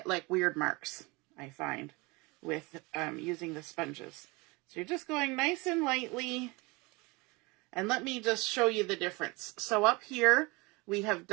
like weird marks, I find, with using the sponges. So you're just going nice and lightly. And let me just show you the difference. So up here, we have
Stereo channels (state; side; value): quieter; left; 25.6 dB